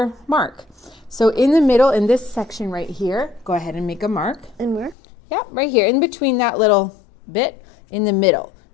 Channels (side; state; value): right; drops out; at 5.0 s